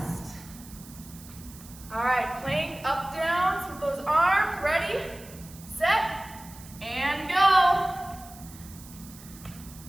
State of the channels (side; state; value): right; noise; hiss, 19 dB below the sound